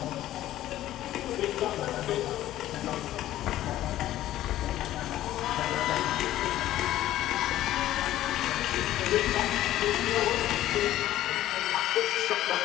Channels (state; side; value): quieter; right; 13.8 dB